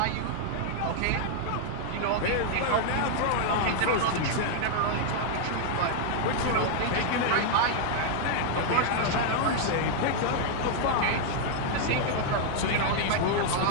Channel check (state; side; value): different; both; correlation 0.00